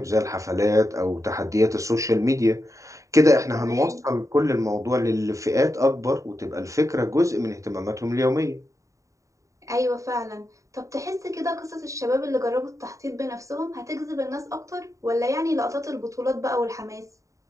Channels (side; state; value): left; late; 0.16 ms